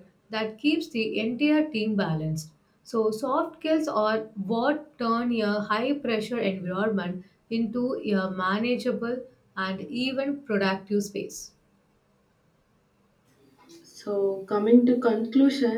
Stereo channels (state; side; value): identical; both; correlation 1.00